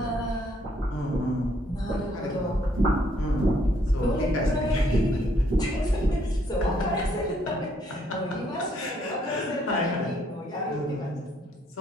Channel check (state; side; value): normal; both; correlation 0.69